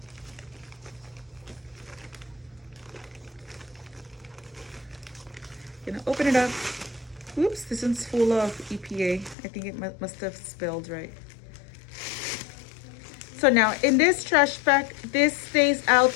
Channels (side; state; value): right; drops out; at 9.3 s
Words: You're gonna open it up. Oops, this one's full of EPA. I think it must have spilled, right? So now in this trash bag, this stays out